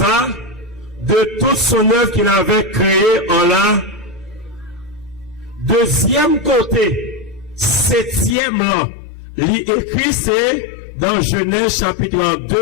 de toute son œuvre qu'il avait créée en la. Deuxième côté, 7e là, l'écrit c'est dans Genèse chapitre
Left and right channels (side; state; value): right; drops out; at 8.3 s